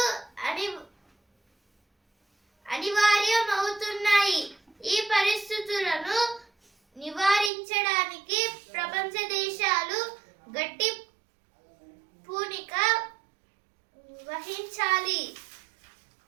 అనివార్యమవుతున్నాయి. ఈ పరిస్థితులను నివారించడానికి ప్రపంచ దేశాలు గట్టి పూనిక వహించాలి.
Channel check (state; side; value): drops out; left; at 7.5 s